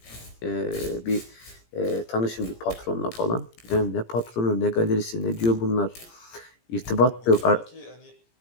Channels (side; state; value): right; late; 17 ms